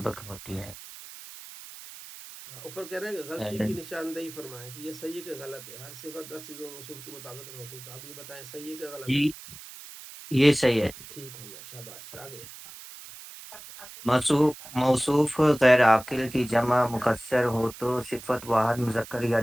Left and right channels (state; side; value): noise; right; hiss, 15 dB below the sound